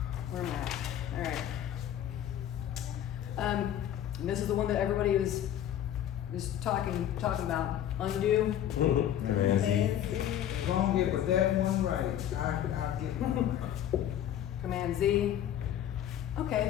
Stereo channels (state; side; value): quieter; right; 10.9 dB